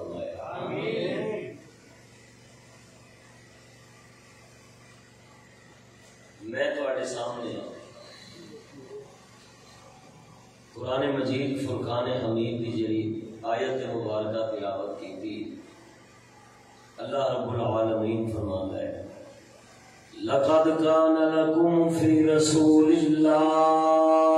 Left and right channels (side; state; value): both; identical; correlation 1.00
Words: میں تواڈے سامنے قرآن مجید فرقان حمید کی جڑی آیت مبارکہ تلاوت کی تھی. اللہ رب العالمین فرماتا ہے لَقَدْ كَانَ لَكُمْ فِي رَسُولِ